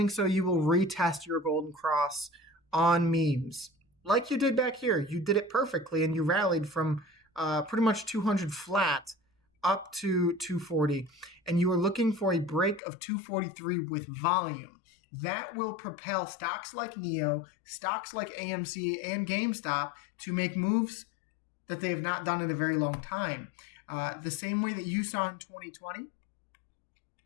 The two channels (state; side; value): drops out; right; at 12.8 s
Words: so, you will retest your golden cross on memes. Like you did back here. You did it perfectly, and you rallied from pretty much 200 flat up to 240, and you are looking for a break of 243 with volume. That will propel stocks like NEO, stocks like AMC and GameStop to make moves that they have not done in a very long time. The same way that you saw in 2020,